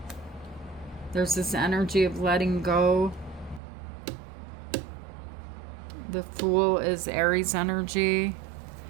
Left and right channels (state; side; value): drops out; left; at 3.6 s